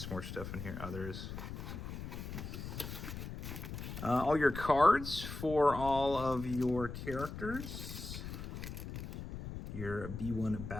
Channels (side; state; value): left; noise; rumble, 8 dB below the sound